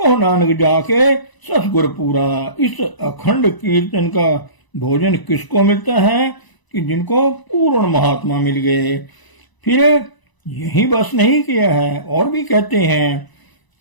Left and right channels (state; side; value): late; right; 1.0 ms